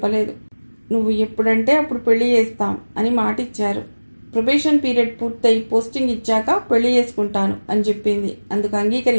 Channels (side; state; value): both; inverted; correlation -1.00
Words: నువ్వు ఎప్పుడంటే అప్పుడు పెళ్లి చేస్తాం అని మాటిచ్చారు. ప్రొబేషన్ పీరియడ్ పూర్తయి పోస్టింగ్ ఇచ్చాక పెళ్లి చేసుకుంటాను అని చెప్పింది. అందుకు